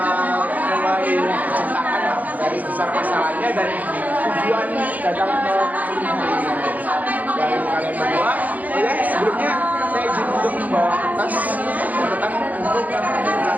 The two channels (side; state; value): left; late; 0.079 ms